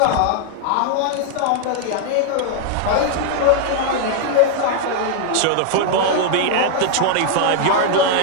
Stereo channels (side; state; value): both; different; correlation 0.00